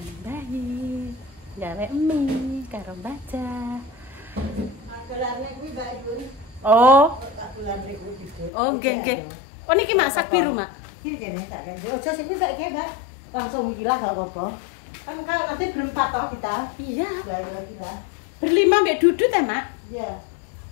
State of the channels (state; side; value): drops out; right; at 8.5 s